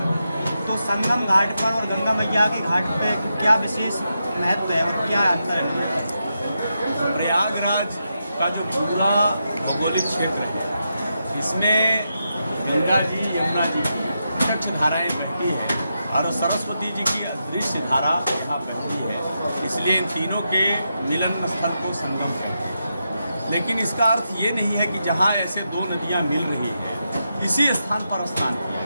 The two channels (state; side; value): inverted; both; correlation -0.86